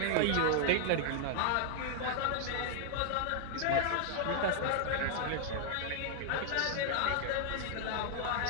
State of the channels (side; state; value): both; different; correlation 0.00